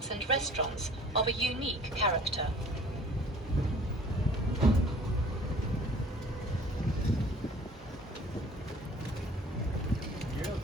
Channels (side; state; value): both; normal; correlation 0.49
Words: and restaurants of a unique character.